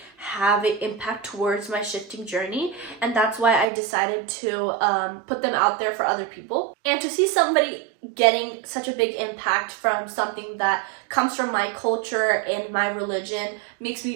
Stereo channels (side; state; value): left; drops out; at 3.7 s